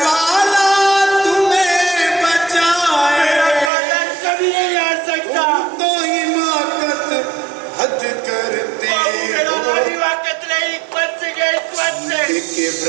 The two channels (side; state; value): left; drops out; at 3.7 s